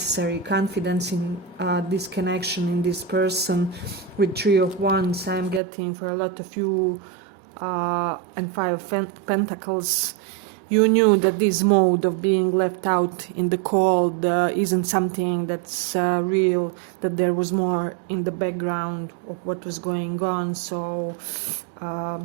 confidence in this connection, in this person. With 3 of Wands, I'm getting for a lot of you, and 5 of Pentacles. You knew that this mode of being left out in the cold isn't something that's real, that there was more in the background of what was going on. So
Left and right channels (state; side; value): drops out; left; at 5.6 s